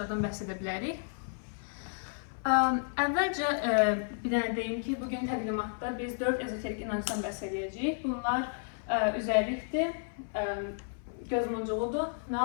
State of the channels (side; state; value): right; silent; 56 dB below the other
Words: bəhs edə bilərik. Əvvəlcə bir dənə deyim ki, bugün təqdimatda biz 4 ezoterik inancdan bəhs edəcəyik. Bunlar üzərlikdir, gözmuncuğudur,